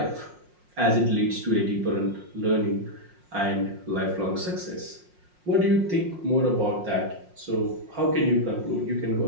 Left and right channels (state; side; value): late; left; 5.6 ms